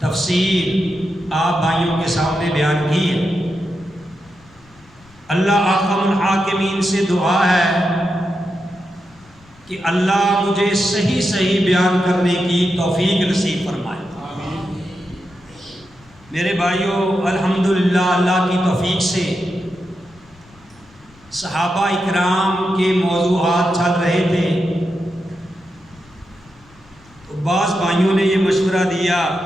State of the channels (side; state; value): left; noise; rumble, 27 dB below the sound